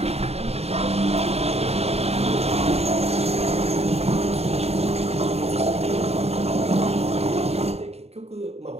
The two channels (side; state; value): left; late; 0.30 ms